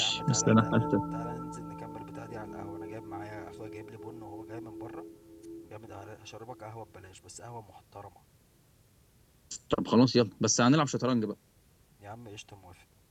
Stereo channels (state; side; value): identical; both; correlation 1.00